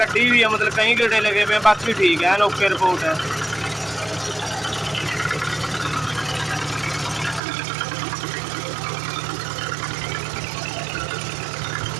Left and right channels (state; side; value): drops out; left; at 7.4 s